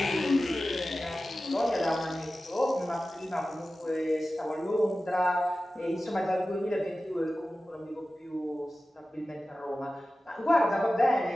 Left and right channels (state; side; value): normal; both; correlation 0.95